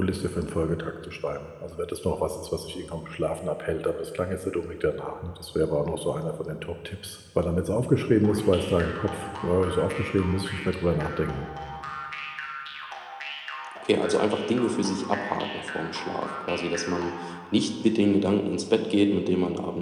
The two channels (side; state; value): both; identical; correlation 1.00